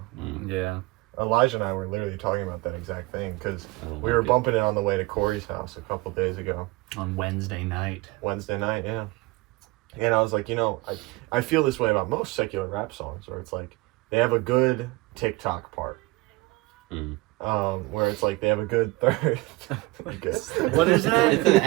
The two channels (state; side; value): quieter; left; 22.3 dB